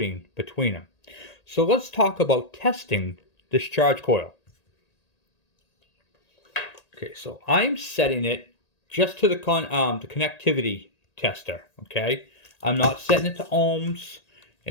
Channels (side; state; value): right; late; 1.8 ms